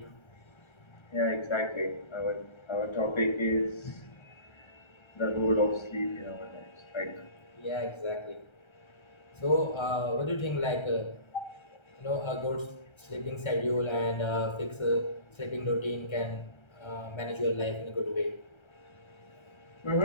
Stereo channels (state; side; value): late; right; 1.3 ms